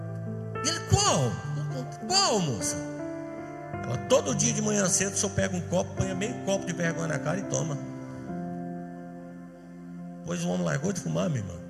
E ele: qual, moça? Ela: todo dia de manhã cedo o senhor pega um copo, põe meio copo de vergonha na cara e toma. Pois o homem largou de fumar, minha irmã,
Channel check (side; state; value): both; identical; correlation 1.00